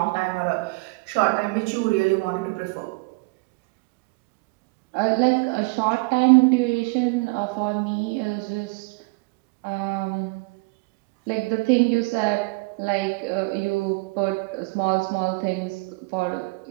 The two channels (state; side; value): quieter; left; 28.1 dB